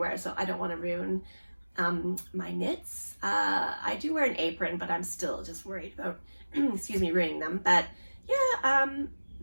so I don't want to ruin my knits. I do wear an apron, but I'm still just worried about, excuse me, ruining them. But yeah,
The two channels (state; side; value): inverted; both; correlation -1.00